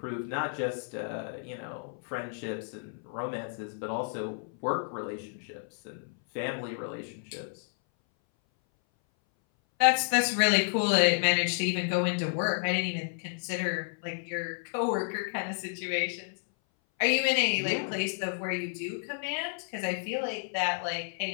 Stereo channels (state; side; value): silent; right; 57 dB below the other